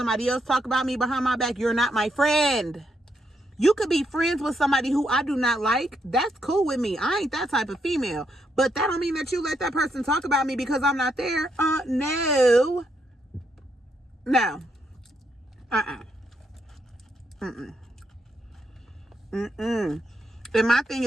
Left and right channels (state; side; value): normal; both; correlation 0.78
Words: else talk about me behind my back, you're not my friend. You could be friends with somebody who I do not like. That's cool with me. I ain't that type of female. But that don't mean that you let that person talk about me because I'm not there. No. No. And my thing